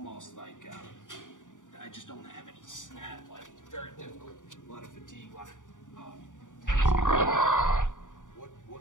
like I just don't have any snap. Like, it's very difficult. A lot of fatigue, a lot of tension.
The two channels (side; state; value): right; late; 0.87 ms